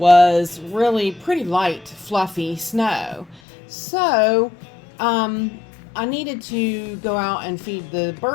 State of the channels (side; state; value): right; drops out; at 3.4 s